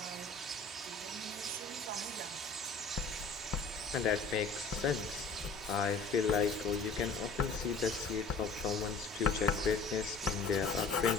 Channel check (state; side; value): quieter; right; 4.1 dB